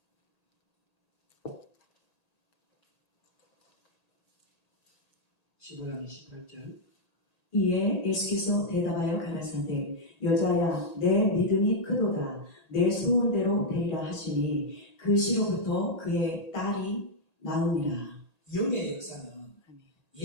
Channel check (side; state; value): right; late; 1.8 ms